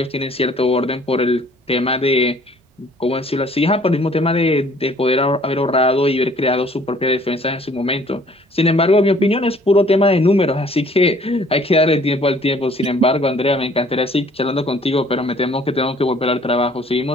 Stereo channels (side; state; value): both; normal; correlation 0.57